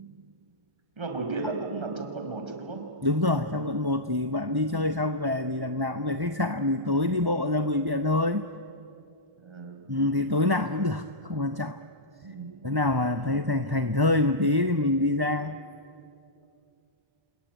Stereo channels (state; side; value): late; left; 1.1 ms